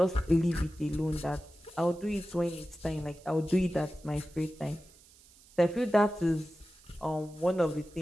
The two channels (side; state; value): right; noise; hiss, 26 dB below the sound